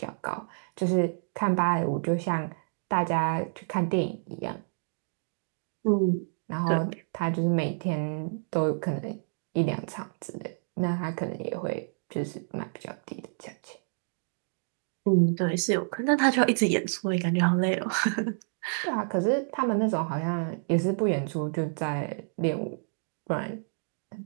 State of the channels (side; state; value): left; silent; digital silence